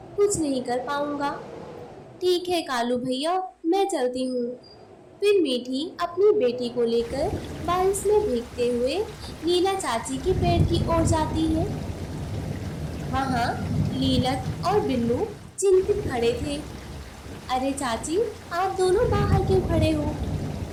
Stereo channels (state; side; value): identical; both; correlation 1.00